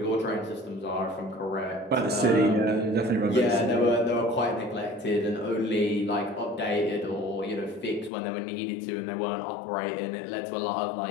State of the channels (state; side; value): drops out; right; at 8.1 s